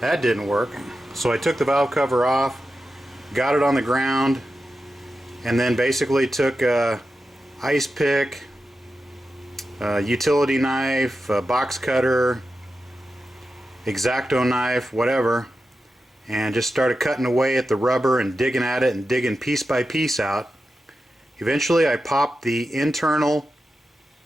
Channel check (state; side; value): normal; both; correlation 0.91